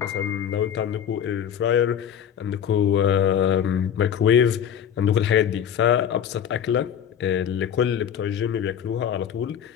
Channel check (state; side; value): quieter; right; 8.9 dB